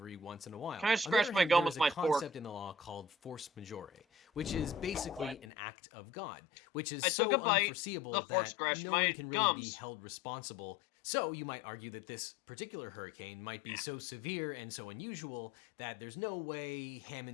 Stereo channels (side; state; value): right; drops out; at 5.5 s